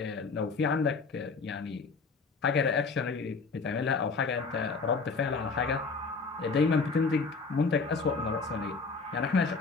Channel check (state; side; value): quieter; right; 4.4 dB